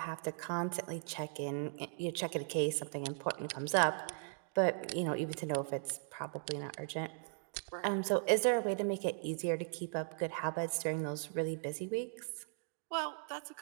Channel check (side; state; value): left; silent; digital silence